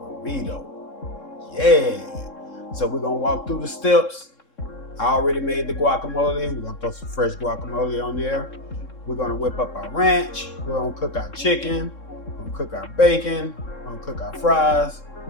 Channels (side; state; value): right; late; 3.7 ms